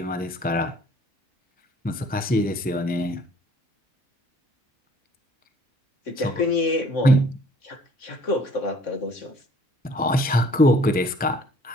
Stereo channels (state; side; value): normal; both; correlation 0.56